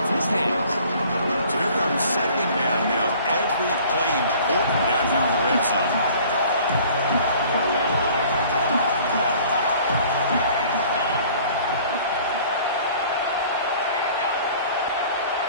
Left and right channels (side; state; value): both; inverted; correlation -0.51